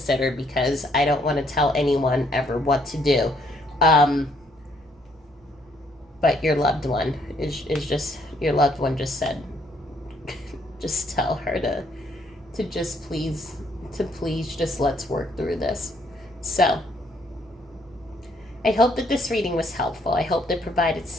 because I don't want to tell anyone ever what to do. But your loved one is just, your loved one just said, just tell her to just please, just let's work through this. So I hope that this reading was helpful. I hope that provided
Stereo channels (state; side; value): normal; both; correlation 0.68